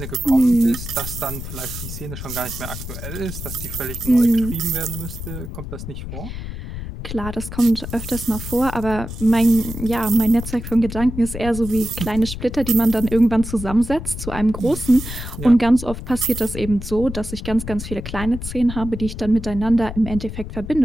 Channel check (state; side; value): noise; left; rumble, 8 dB below the sound